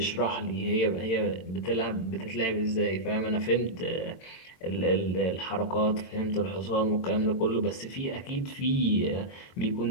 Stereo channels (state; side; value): late; right; 22 ms